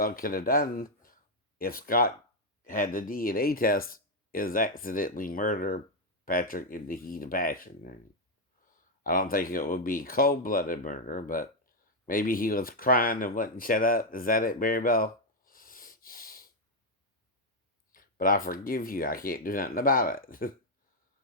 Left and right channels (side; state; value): both; normal; correlation 0.01